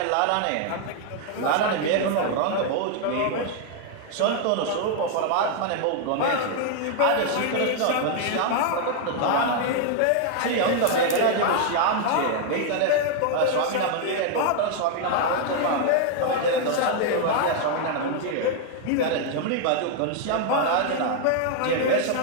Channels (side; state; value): both; different; correlation 0.00